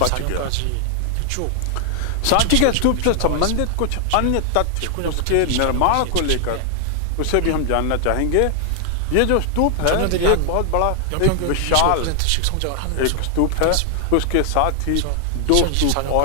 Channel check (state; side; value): different; both; correlation 0.00